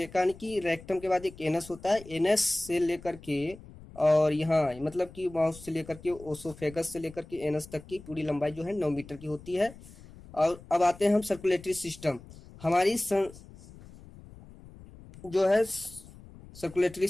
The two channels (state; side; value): noise; left; rumble, 19 dB below the sound